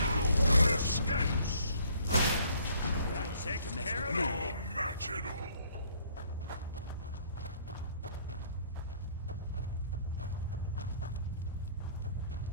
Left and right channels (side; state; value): both; inverted; correlation -0.61